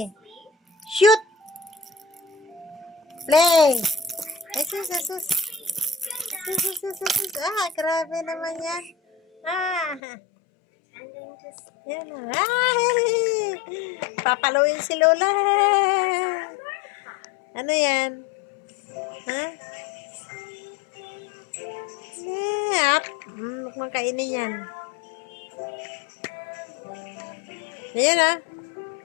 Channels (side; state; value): right; drops out; at 10.0 s